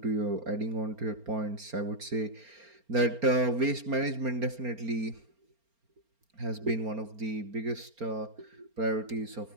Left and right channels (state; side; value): late; left; 4.3 ms